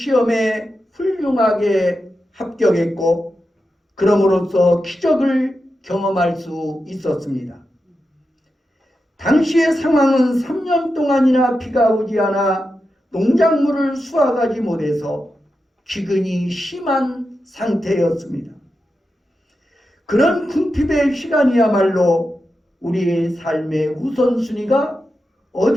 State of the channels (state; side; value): normal; both; correlation 0.89